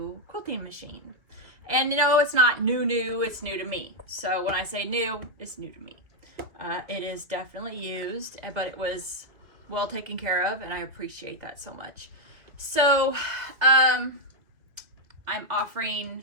quilting machine. And you know, it's not new, it's new to me. So when I say new, it's new to me. It is definitely used, but it was well taken care of, and I appreciate that so much. So I'm offering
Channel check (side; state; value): left; late; 2.4 ms